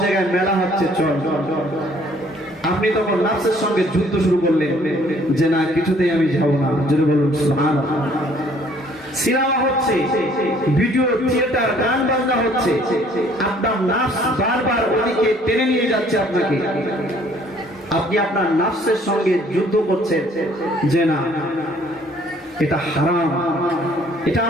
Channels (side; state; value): both; normal; correlation 0.60